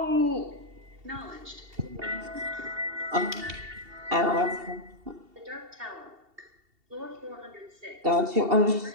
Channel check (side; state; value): left; late; 2.7 ms